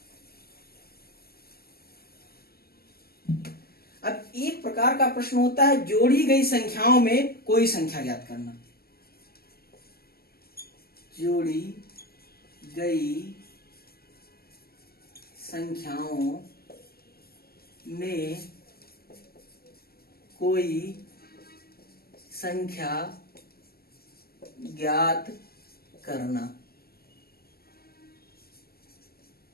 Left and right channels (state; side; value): late; right; 0.44 ms